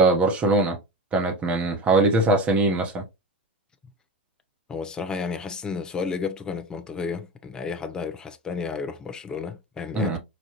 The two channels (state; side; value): normal; both; correlation 0.28